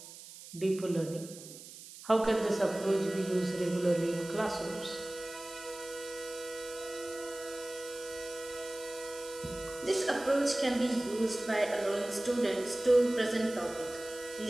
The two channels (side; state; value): right; noise; hiss, 15 dB below the sound